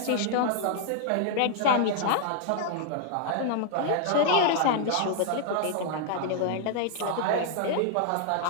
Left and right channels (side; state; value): both; different; correlation 0.00